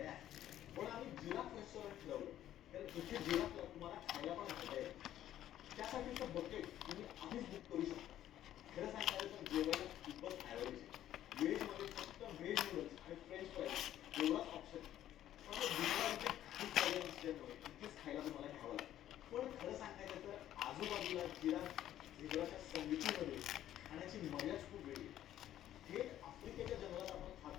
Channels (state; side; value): quieter; right; 12.1 dB